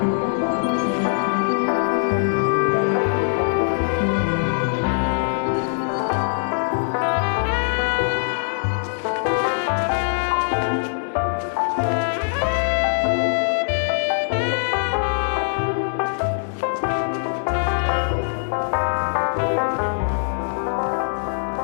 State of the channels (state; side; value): silent; right; digital silence